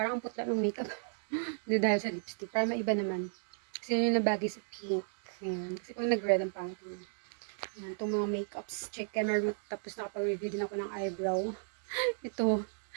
ang putla ng makeup. Hindi dahil sa lipstick. Para maiba naman. Kasi yun yung nabagay sa pink. Yan. Kasi kung nag-red ang pangit yun. Yan. Itong mga makeups. Check camera. Tapos nakapag-review din ako ng eyebrow. Itong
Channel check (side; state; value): left; silent; digital silence